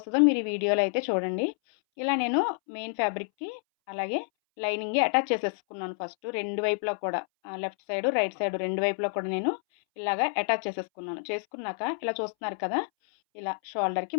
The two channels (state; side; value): silent; right; 59 dB below the other